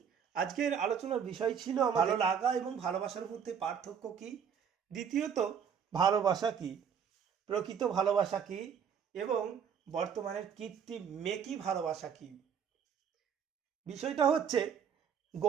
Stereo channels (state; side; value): quieter; left; 7.5 dB